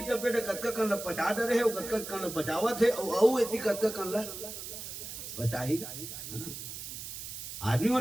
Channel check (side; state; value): right; noise; hiss, 9 dB below the sound